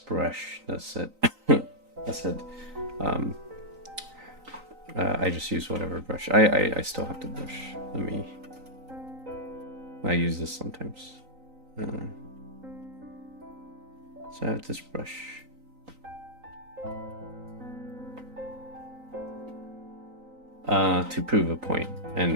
that said that said I just use whatever brush. I still have the brush. I use this sometimes. So I have this brush. To prove a point,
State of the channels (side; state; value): left; late; 3.9 ms